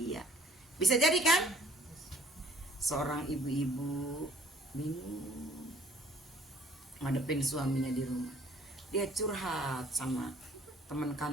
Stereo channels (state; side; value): normal; both; correlation 0.55